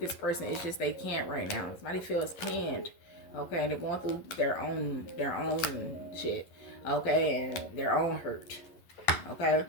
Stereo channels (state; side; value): late; right; 11 ms